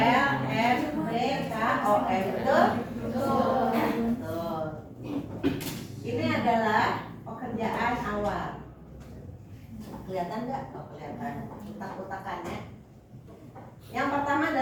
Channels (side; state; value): both; identical; correlation 1.00